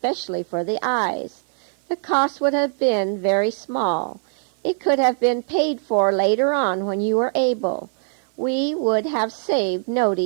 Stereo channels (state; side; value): silent; left; digital silence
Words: for the eyes. The cost would have been very small. It could have been paid for later on when you were able. We would have saved